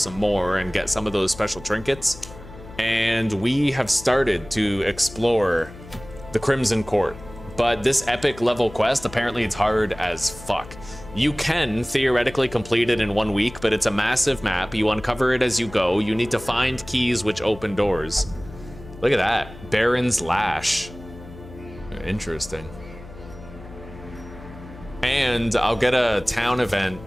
more and get some of those special trinkets. And we have started to explore the Crimson Court. But this epic level quest, apparently it's hard as fuck. You can theoretically complete it in 1 week, but it's a massive map. You uncover it as you go. You need to find keys which open doors. Look at that. Baron's Lash. Interesting. And I'll get a town event.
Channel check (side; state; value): left; noise; hum, 17 dB below the sound